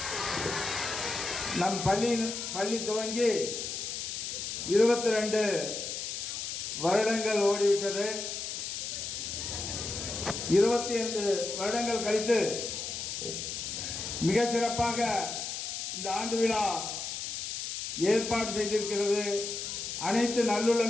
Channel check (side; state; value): left; noise; hiss, 5 dB below the sound